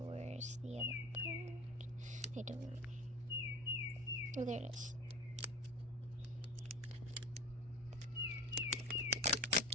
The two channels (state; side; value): normal; both; correlation 0.32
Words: the other part? I don't know. Oh, there it is.